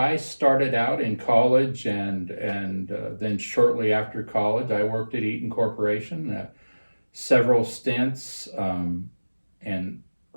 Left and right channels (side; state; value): both; inverted; correlation -1.00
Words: started out in college, and then shortly after college, I worked at Eaton Corporation, several stints, and